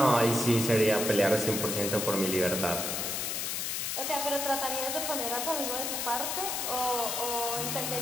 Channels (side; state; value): left; noise; hiss, 1 dB below the sound